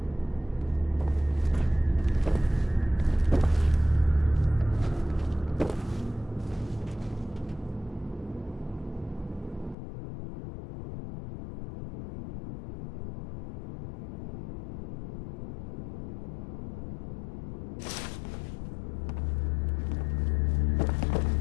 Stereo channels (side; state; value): right; drops out; at 9.8 s